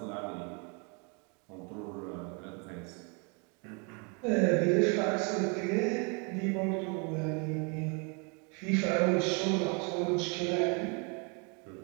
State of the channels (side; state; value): left; quieter; 34.2 dB